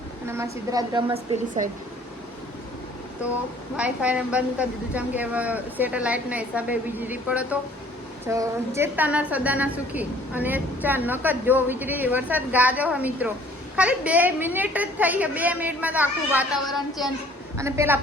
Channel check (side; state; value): both; normal; correlation 0.55